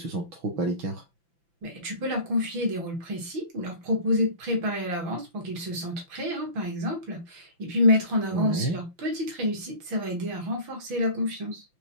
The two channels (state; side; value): late; left; 5.9 ms